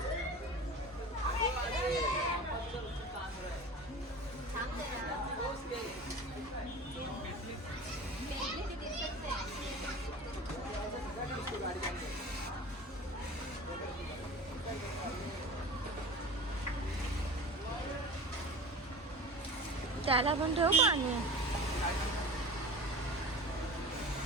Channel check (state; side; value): normal; both; correlation 0.36